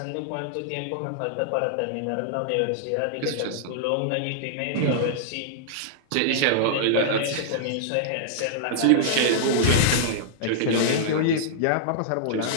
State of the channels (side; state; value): both; different; correlation -0.02